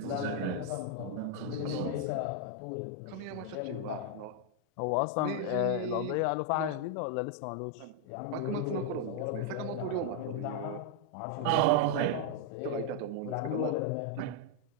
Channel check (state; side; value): different; both; correlation 0.00